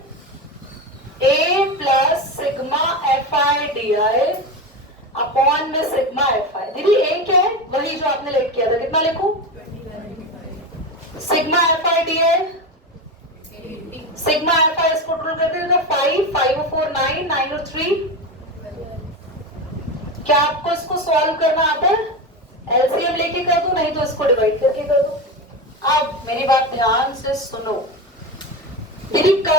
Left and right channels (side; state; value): both; normal; correlation 0.20